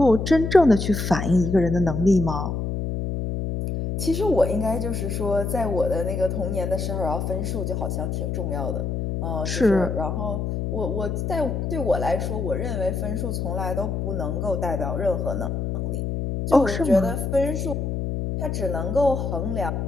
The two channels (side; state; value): left; noise; hum, 2 dB below the sound